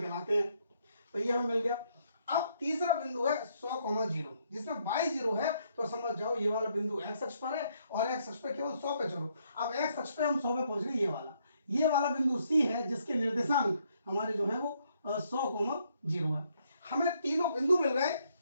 कहलाते हैं। तो ये हमें मिल गया। अब तीसरा बिंदु है 100,0 जिसमें y 0 है तो समझ जाओ ये वाला बिंदु x अक्ष पर है और x अक्ष पे केवल 100 पे चलो। अब x अक्ष पे हम 100 पे पहुंच गए, ये वाला बिंदु C है जिसके निर्देशांक हमारे जो है वो 100,0 है। हमें तीनों बिंदु मिल गए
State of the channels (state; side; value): inverted; both; correlation -0.72